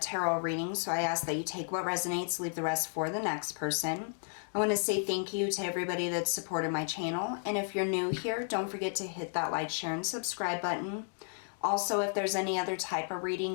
reading, so I ask that you take what resonates, leave the rest for the next person. I want to say thank you to everybody that's supported my channel, and if you're new here, don't forget to hit that like, share, and subscribe button. Also, if there's any other type of reading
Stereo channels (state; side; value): silent; right; 56 dB below the other